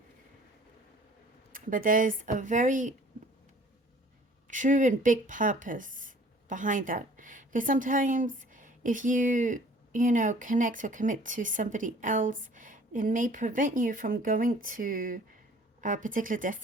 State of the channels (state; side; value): normal; both; correlation 0.52